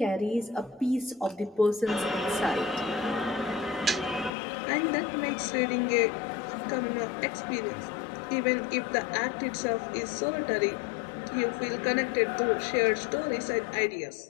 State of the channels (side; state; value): right; drops out; at 4.3 s